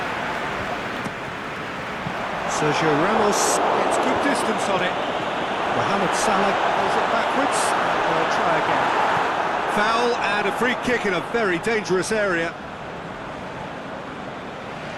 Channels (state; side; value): identical; both; correlation 1.00